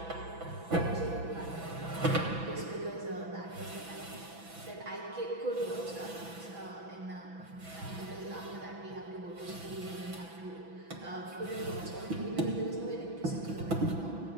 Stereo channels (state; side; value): late; left; 6.0 ms